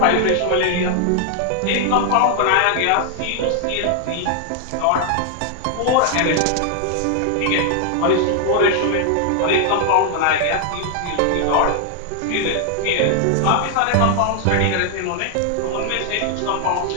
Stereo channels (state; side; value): different; both; correlation 0.00